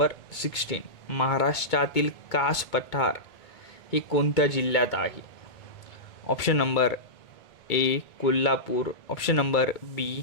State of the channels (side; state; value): right; late; 2.2 ms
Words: 16. महाराष्ट्रातील कास पठार हे कोणत्या जिल्ह्यात आहे? Option number A Kolhapur, option number